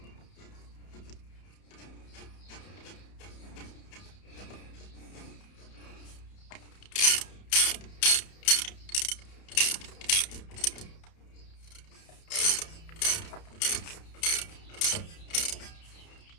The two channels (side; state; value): right; late; 31 ms